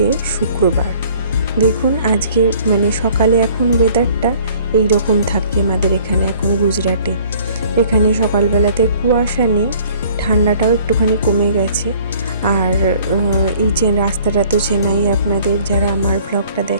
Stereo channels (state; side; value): inverted; both; correlation -0.54